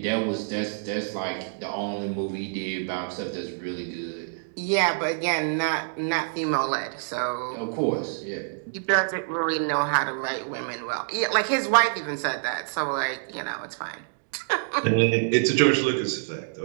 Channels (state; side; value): silent; left; digital silence